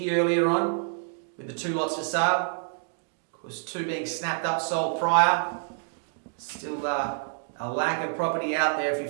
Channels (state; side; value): silent; left; digital silence